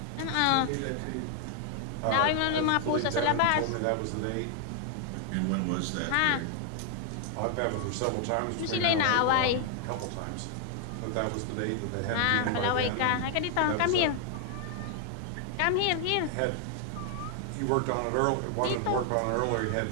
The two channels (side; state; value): both; different; correlation 0.00